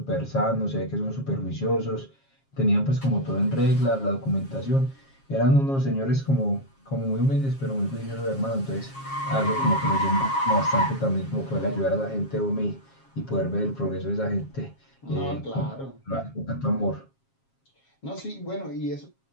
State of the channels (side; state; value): right; late; 7.4 ms